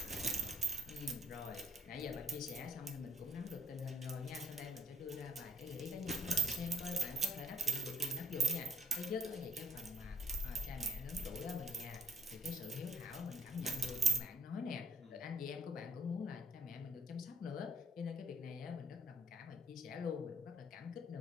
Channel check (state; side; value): normal; both; correlation 0.62